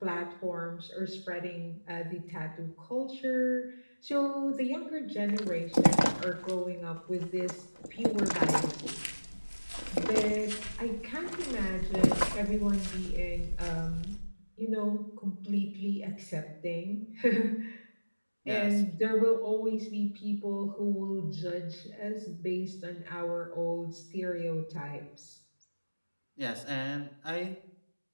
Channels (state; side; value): inverted; both; correlation -1.00